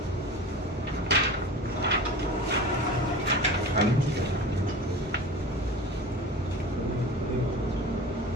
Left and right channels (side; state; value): both; normal; correlation 0.35